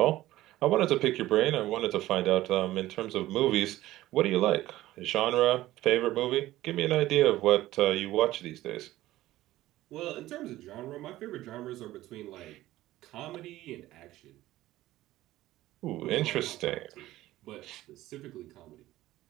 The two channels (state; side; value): quieter; left; 15.8 dB